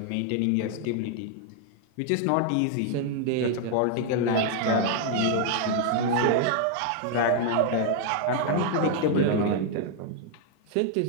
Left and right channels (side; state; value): both; different; correlation 0.00